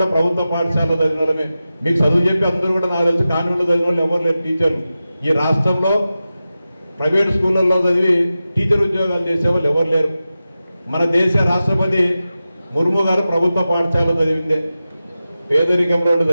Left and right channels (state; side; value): inverted; both; correlation -0.93